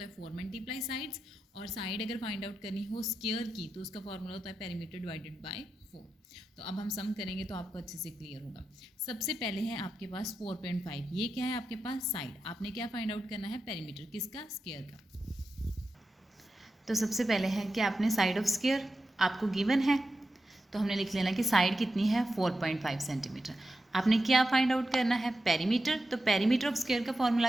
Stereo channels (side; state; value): both; normal; correlation 0.90